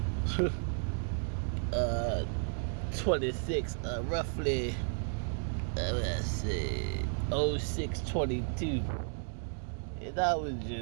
doing. 26, roughly, let's see, 06:22. And I was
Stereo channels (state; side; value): silent; left; 56 dB below the other